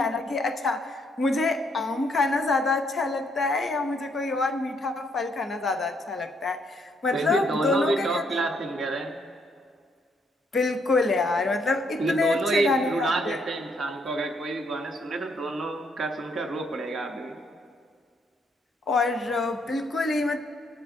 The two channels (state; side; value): normal; both; correlation 0.71